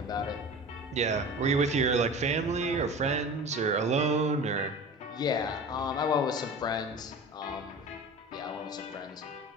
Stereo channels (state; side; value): normal; both; correlation 0.36